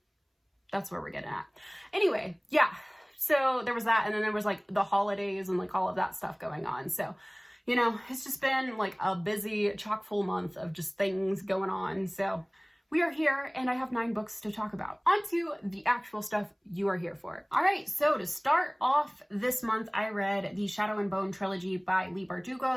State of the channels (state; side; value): identical; both; correlation 1.00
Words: That's where we're getting at. Anyway, yeah. So there was that, and then there was the holidays and all of that stuff going on. So, it's just been a busy, chock full month of just things going on. So we are here and I have 9 books to talk about. On to the actual stuff you are here for. All right, so to start off this month, I read the Shadow and Bone trilogy by Leigh